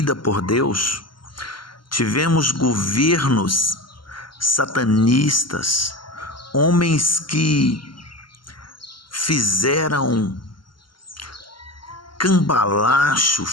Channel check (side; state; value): right; late; 0.72 ms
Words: por Deus. Tivemos governos satanistas, homens que fizeram cambalacho,